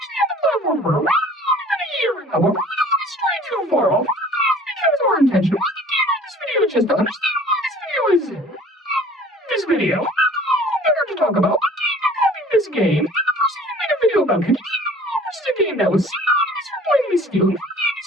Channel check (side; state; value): both; normal; correlation 0.49